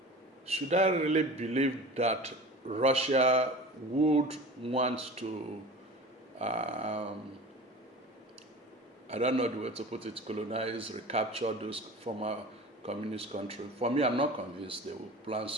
Should I really believe that Russia would want to I don't know the way to put it, colonize, recapture those former communist countries? For me, I'm not convinced they will plan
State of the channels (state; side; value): normal; both; correlation 0.37